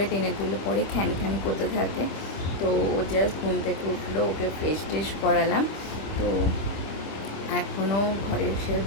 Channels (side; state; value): right; late; 26 ms